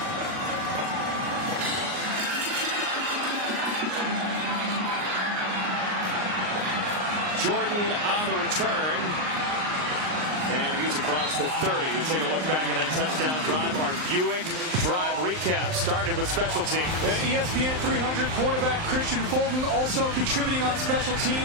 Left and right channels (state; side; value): late; left; 39 ms